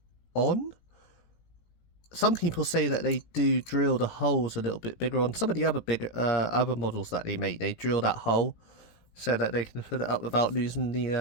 on. Some people say that they do drill the holes a little bit bigger on some of the other other models that they make. They drill that hole so that they can fit it up without losing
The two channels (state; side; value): late; right; 18 ms